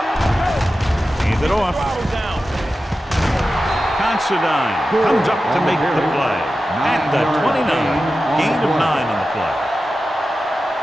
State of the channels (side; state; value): both; normal; correlation 0.93